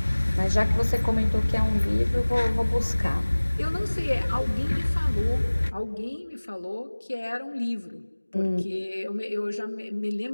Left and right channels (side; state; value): both; inverted; correlation -1.00